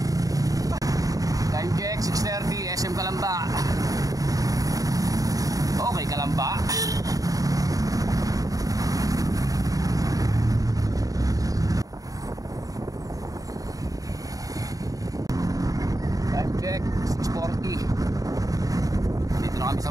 Time check 6:30 SM Kalamba. Okay Kalamba. Time check 6:40. Dito na kami sa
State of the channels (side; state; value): left; late; 0.17 ms